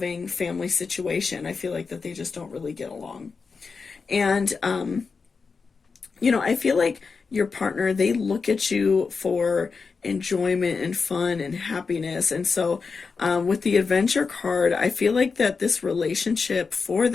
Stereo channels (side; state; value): right; quieter; 4.9 dB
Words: family situation. I feel like that they just don't really get along. And, you know, I feel like your partner, they look at you for enjoyment and fun and happiness. And so with the adventure card, I feel like that this relationship for